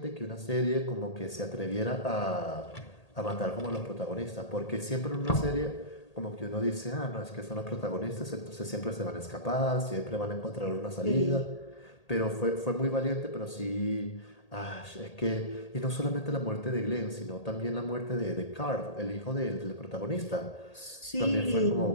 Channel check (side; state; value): right; late; 1.8 ms